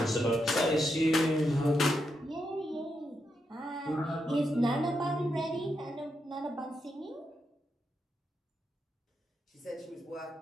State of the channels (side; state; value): both; normal; correlation 0.83